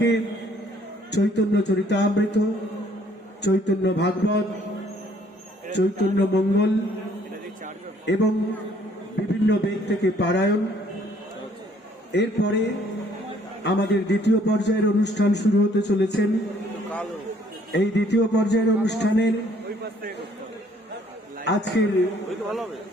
চৈতন্য চরিতামৃত, চৈতন্য ভাগবত, চৈতন্য মঙ্গল এবং বিভিন্ন বেদ থেকে পারায়ণ। এরপরে আমাদের দ্বিতীয় পর্যায়ের অনুষ্ঠান শুরু হতে চলেছেন। এই দ্বিতীয় পর্যায়ের অনুষ্ঠানের আজকের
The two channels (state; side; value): normal; both; correlation 0.62